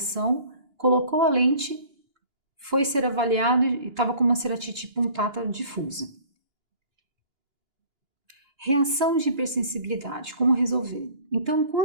colocou a lente, foi ser avaliado e estava com uma ceratite punctata difusa. Reação de hipersensibilidade, como resolver? Então,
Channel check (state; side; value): late; left; 2.9 ms